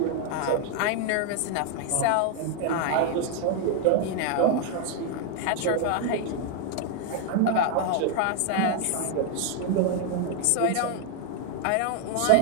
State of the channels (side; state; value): both; different; correlation 0.00